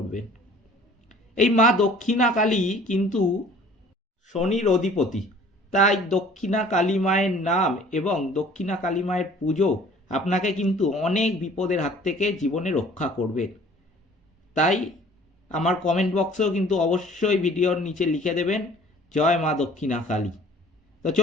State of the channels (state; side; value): normal; both; correlation 0.51